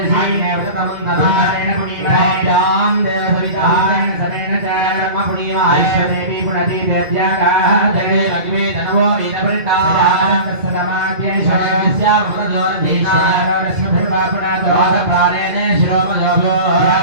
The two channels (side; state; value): left; late; 2.5 ms